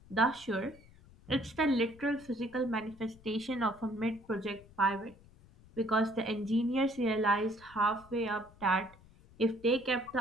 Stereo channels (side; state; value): left; noise; rumble, 24 dB below the sound